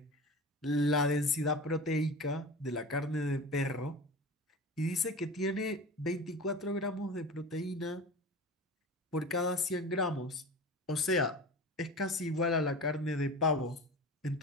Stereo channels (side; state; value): both; normal; correlation 0.33